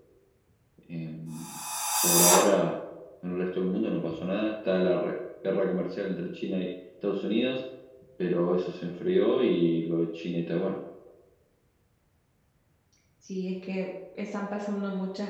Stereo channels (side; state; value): both; identical; correlation 1.00